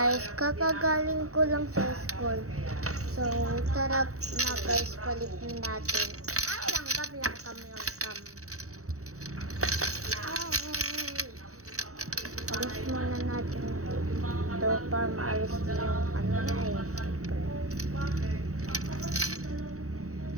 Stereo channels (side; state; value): left; late; 0.65 ms